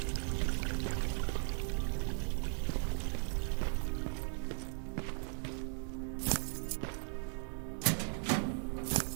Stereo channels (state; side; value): silent; left; 53 dB below the other